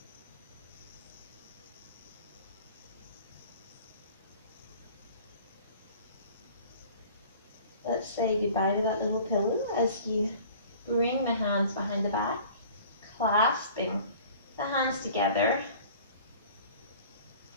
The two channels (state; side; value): inverted; both; correlation -0.47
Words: Let's say goodbye to that little pillow as you bring the hands behind the back, clasping the hands together.